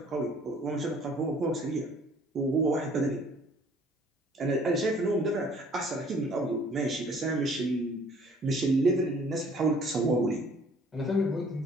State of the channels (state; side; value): normal; both; correlation 0.56